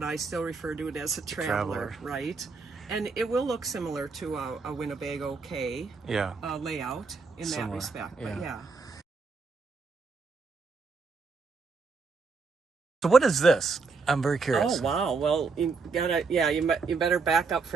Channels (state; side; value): quieter; left; 4.5 dB